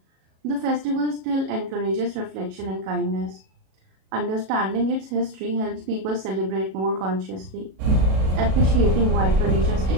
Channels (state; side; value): late; left; 37 ms